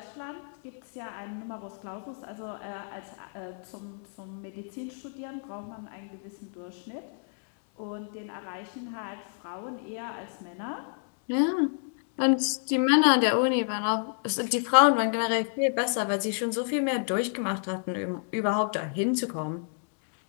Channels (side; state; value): right; silent; 58 dB below the other